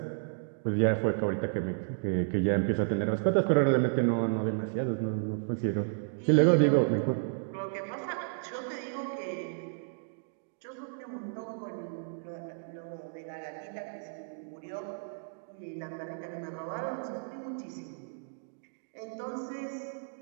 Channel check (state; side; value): silent; left; digital silence